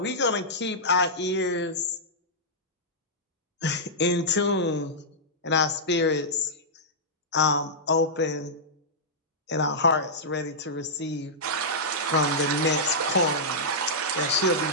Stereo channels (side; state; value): both; normal; correlation -0.12